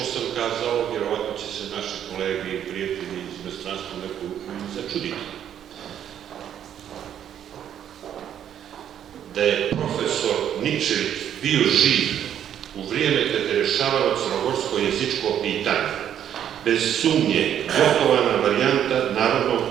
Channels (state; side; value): quieter; left; 9.8 dB